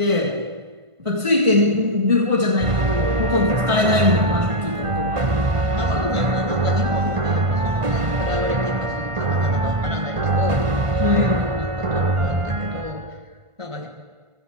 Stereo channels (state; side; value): late; left; 1.5 ms